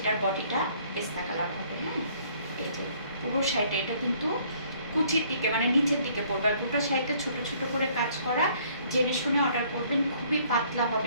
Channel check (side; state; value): both; inverted; correlation -0.61